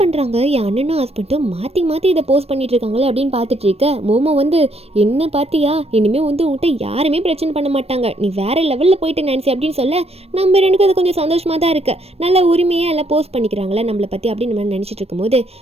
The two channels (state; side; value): late; left; 0.29 ms